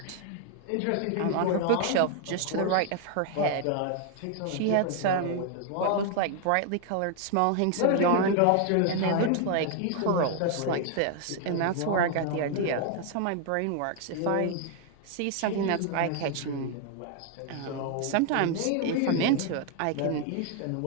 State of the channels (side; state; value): both; different; correlation 0.00